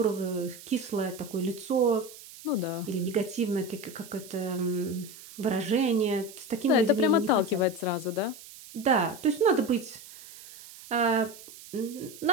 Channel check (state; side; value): noise; right; hiss, 17 dB below the sound